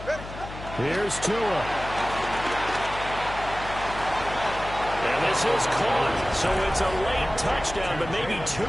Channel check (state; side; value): noise; left; hum, 12 dB below the sound